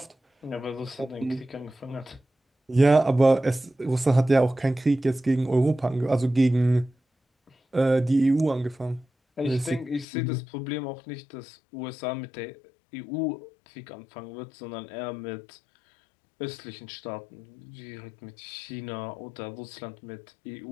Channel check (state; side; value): drops out; right; at 10.1 s